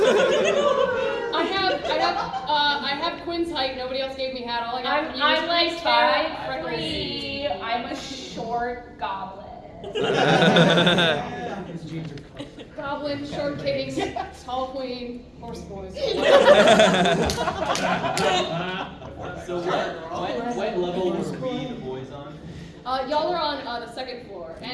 I have Quinn's height. Nobody else gave me hat. All I got from you I'm is like Quinn's hair, 5'3". I'm a short goblin. Goblin, short king, tall queen, horse boys. So what level were we the boys on? Y'all are on the second floor,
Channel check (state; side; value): identical; both; correlation 1.00